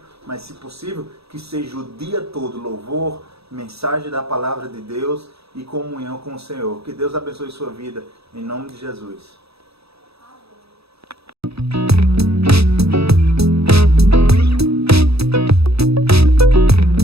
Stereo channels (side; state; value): left; late; 0.78 ms